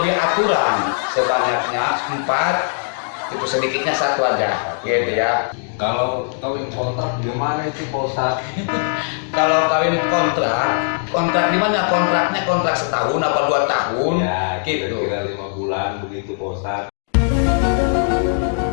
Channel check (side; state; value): right; silent; digital silence